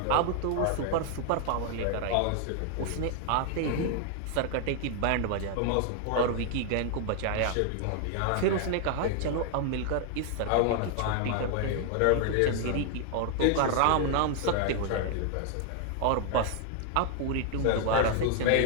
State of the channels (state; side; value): different; both; correlation 0.00